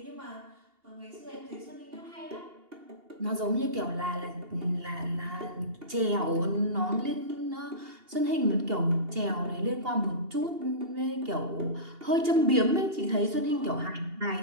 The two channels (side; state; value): left; late; 2.8 ms